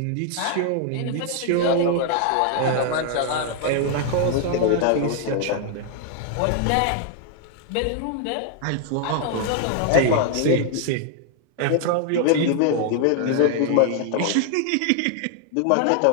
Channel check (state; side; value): different; both; correlation 0.00